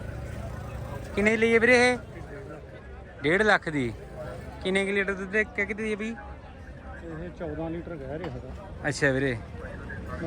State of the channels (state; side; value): identical; both; correlation 1.00